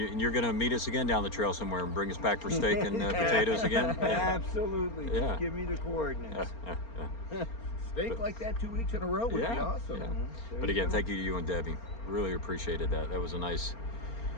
going to meet us again down the trail somewhere and bring us back for steak and potatoes again? Yeah. Absolutely. Yeah. Just give me the coordinates. Steak like that 2 weeks in a row would be awesome. Yeah. But again, thank you to you and Debbie. Really appreciated that. That was a nice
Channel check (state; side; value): late; right; 4.3 ms